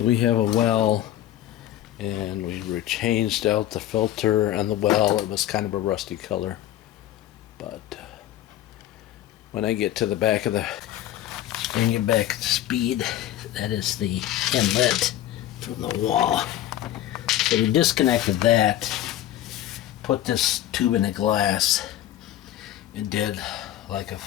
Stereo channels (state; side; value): quieter; right; 12.9 dB